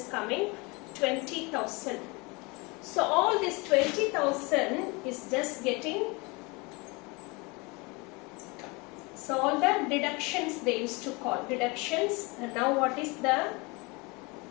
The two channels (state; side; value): quieter; right; 27.0 dB